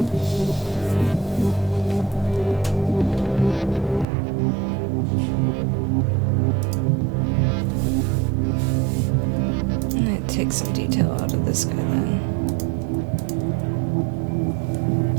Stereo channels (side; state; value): left; drops out; at 4.0 s